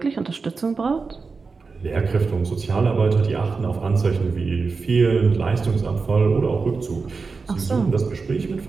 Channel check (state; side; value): quieter; left; 4.5 dB